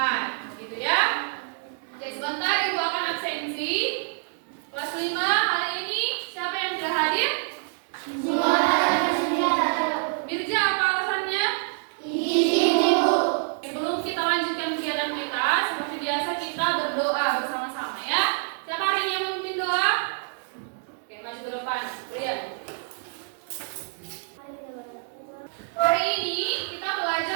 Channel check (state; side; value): silent; left; 61 dB below the other